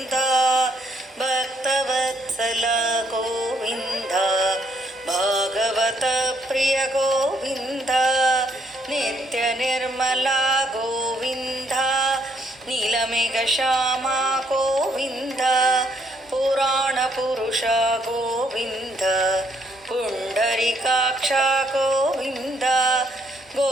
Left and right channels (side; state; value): both; normal; correlation 0.71